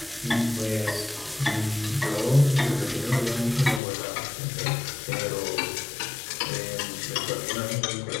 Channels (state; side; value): drops out; right; at 3.8 s